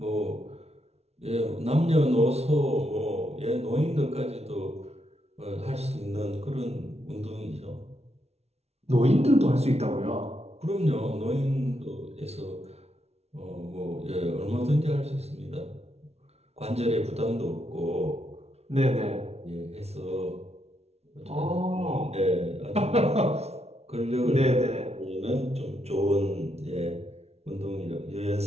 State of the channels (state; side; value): late; left; 0.31 ms